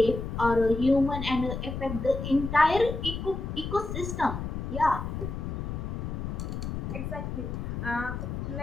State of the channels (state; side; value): noise; left; rumble, 5 dB below the sound